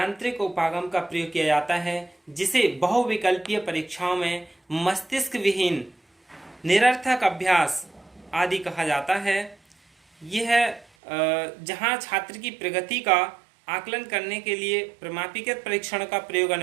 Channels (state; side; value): drops out; left; at 10.9 s